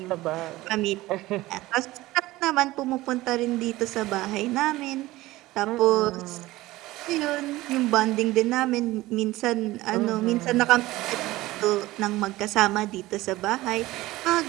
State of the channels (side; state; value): left; quieter; 18.1 dB